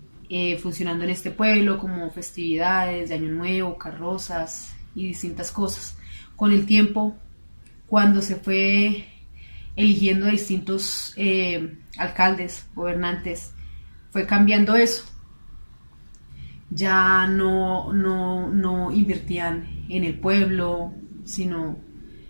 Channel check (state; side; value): inverted; both; correlation -1.00